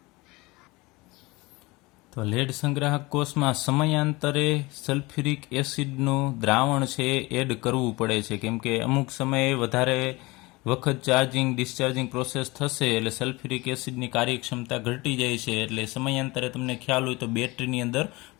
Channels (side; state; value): right; quieter; 23.0 dB